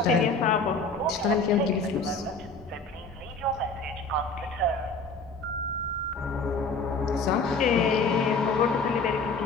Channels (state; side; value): quieter; right; 3.7 dB